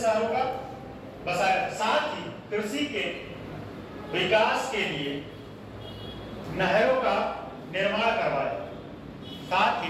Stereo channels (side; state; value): both; identical; correlation 1.00